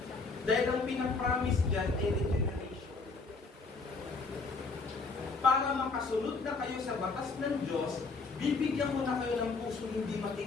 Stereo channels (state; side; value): quieter; right; 4.1 dB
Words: Dahil ang pinapromise dyan ay regeneration. Para makasunod na kayo sa batas ng Diyos, bibigyan ko na kayo ng puso hindi